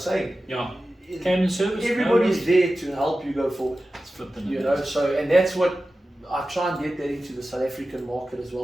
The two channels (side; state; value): both; normal; correlation 0.94